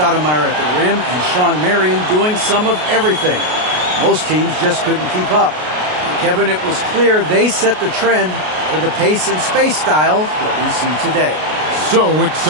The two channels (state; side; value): late; left; 33 ms